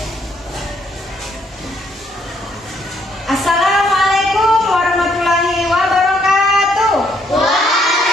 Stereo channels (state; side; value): normal; both; correlation 0.70